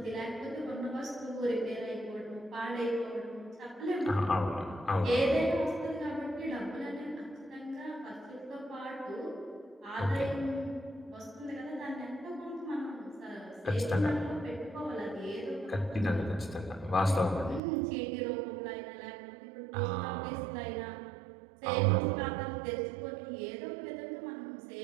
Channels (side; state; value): left; drops out; at 17.6 s